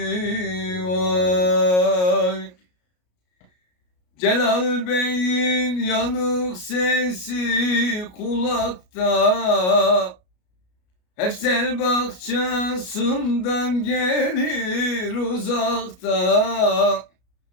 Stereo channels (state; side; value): late; right; 33 ms